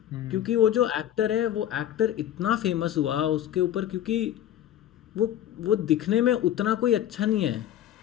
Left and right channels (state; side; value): quieter; right; 11.5 dB